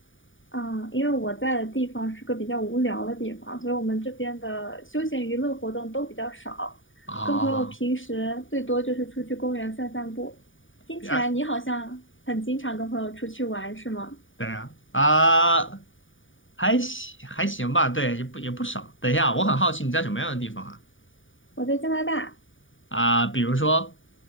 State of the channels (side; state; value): right; late; 0.57 ms